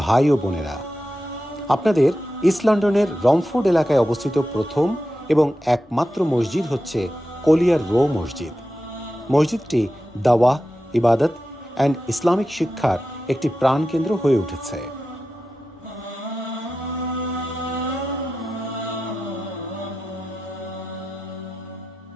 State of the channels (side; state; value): both; normal; correlation 0.91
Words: ভাই ও বোনেরা, আপনাদের ইস্ট লন্ডনের রমফোর্ড এলাকায় অবস্থিত প্রথম এবং একমাত্র মসজিদ হচ্ছে কলিয়ার রো মসজিদ। মসজিদটি দাওয়াহ, ইবাদত অ্যান্ড ইসলামিক শিক্ষার একটি প্রাণকেন্দ্র হয়ে উঠেছে।